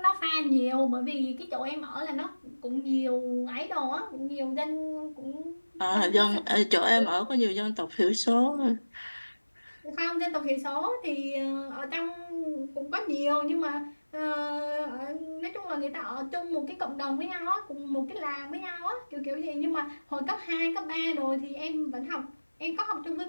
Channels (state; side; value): inverted; both; correlation -1.00